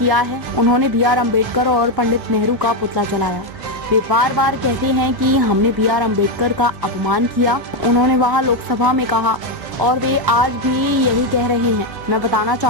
है। उन्होंने बी.आर. अम्बेडकर और पंडित नेहरू का पुतला जलाया। वे बार बार कहते हैं कि हमने बी.आर. अम्बेडकर का अपमान किया। उन्होंने वहां लोकसभा में कहा और वे आज भी यही कह रहे हैं। मैं बताना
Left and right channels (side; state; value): left; late; 1.1 ms